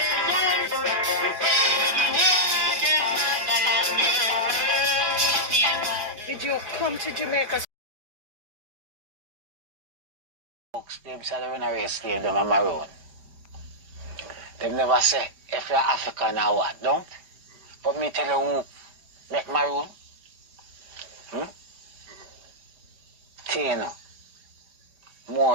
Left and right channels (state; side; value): late; left; 4.9 ms